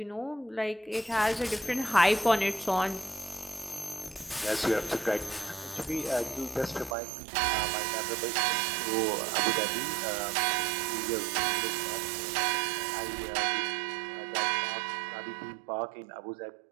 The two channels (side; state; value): left; drops out; at 7.0 s